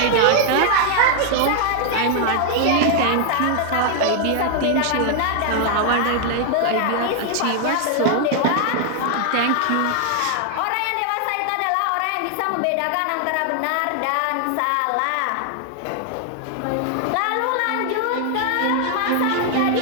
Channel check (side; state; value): both; different; correlation 0.00